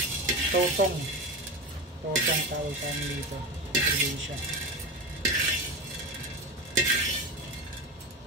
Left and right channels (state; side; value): normal; both; correlation 0.22